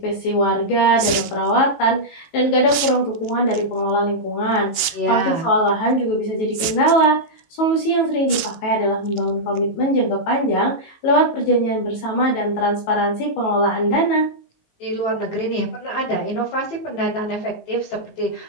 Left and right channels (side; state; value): right; late; 18 ms